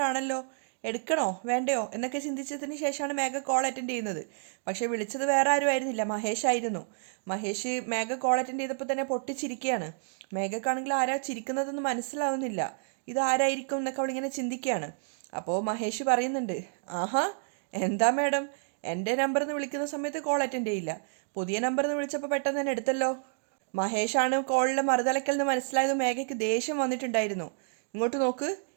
ആണല്ലോ, എടുക്കണോ വേണ്ടയോ എന്നൊക്കെ ചിന്തിച്ചതിന് ശേഷമാണ് മേഘ കോൾ അറ്റൻഡ് ചെയ്യുന്നത്. പക്ഷേ വിളിച്ചത് വേറെ ആരും ആയിരുന്നില്ല, മഹേഷ് ആയിരുന്നു. മഹേഷ് മേഘ കോൾ അറ്റൻഡ് ചെയ്തപ്പോൾ തന്നെ പൊട്ടിച്ചിരിക്കുകയാണ്. മേഘക്കാണെങ്കിൽ ആരാ ചിരിക്കുന്നതെന്ന് മനസ്സിലാവുന്നില്ല. ഇതാരായിരിക്കും എന്നൊക്കെ അവളിങ്ങനെ ചിന്തിക്കുകയാണ്. അപ്പോൾ മഹേഷ് പറയുന്നുണ്ട്, ആഹാ എന്താ മാഡം, എൻ്റെ നമ്പറിൽ നിന്ന് വിളിക്കുന്ന സമയത്ത് കോൾ അറ്റൻഡ് ചെയ്യില്ല, പുതിയ നമ്പറിൽ നിന്ന് വിളിച്ചപ്പോൾ പെട്ടെന്ന് തന്നെ എടുത്തല്ലോ. മഹേഷാണ് കോളിലെ മറുതലക്കൽ നിന്ന് മനസ്സിലായത്. മേഘയ്ക്ക് ദേഷ്യം വന്നിട്ടുണ്ടായിരുന്നു. ഇങ്ങോട്ട് നോക്ക്,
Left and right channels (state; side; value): silent; left; digital silence